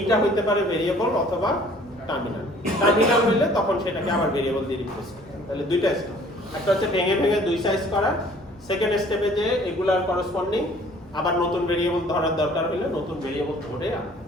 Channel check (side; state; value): both; normal; correlation 0.54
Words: হইতে পারে ভেরিয়েবল অথবা টার্মিনাল হইলে তখন সেটাকে আবার ভেরিয়েবল দিয়ে রিপ্লেস করতে হবে। তাহলে দুইটা স্টেপ, একটা হচ্ছে ভেঙে দুই সাইজ করা, সেকেন্ড স্টেপে যে এগুলার করসপন্ডিং আবার নতুন ভেরিয়েবল ধরার দরকার হইলে নতুন ভেরিয়েবল ধরে আনা,